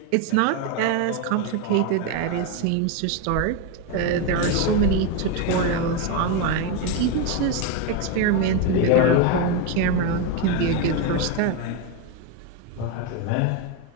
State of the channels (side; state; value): both; different; correlation 0.03